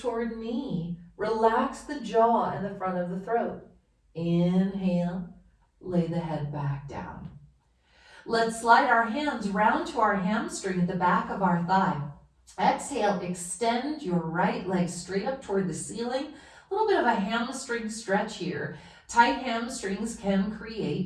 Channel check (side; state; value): both; identical; correlation 1.00